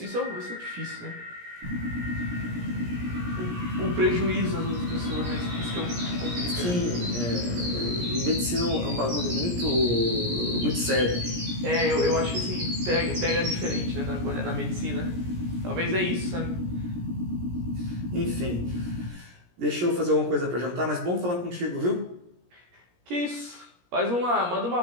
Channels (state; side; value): late; left; 17 ms